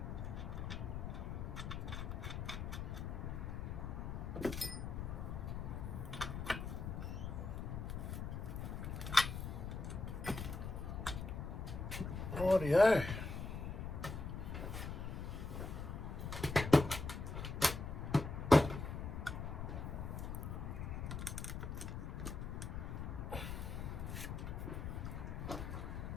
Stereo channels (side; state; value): left; noise; rumble, 4 dB below the sound